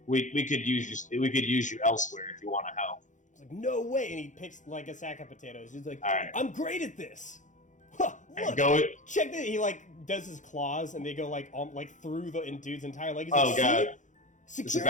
we could use you elsewhere if you want to help. It's like, no way. And he picks like a sack of potatoes. He's like, All right. I'm great at this. Huh, look, Go it. check that. He like does his claws, and they go like through the dude's entire leg. He's Oh like, god, see? this is a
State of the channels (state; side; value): late; right; 0.36 ms